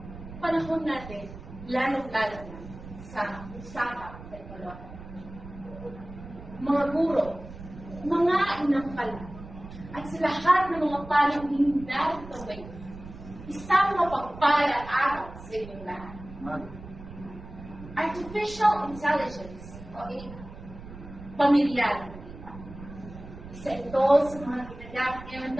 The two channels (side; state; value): right; noise; rumble, 14 dB below the sound